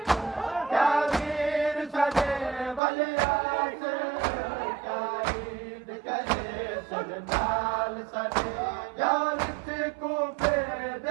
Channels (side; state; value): left; drops out; at 2.8 s